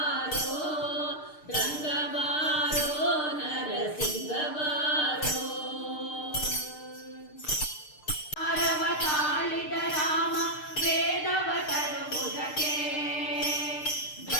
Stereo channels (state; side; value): late; right; 6.6 ms